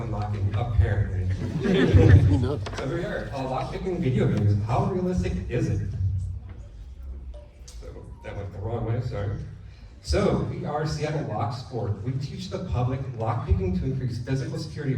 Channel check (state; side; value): identical; both; correlation 1.00